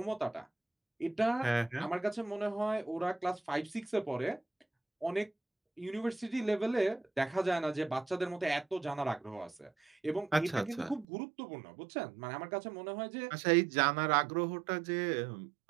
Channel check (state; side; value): drops out; left; at 11.1 s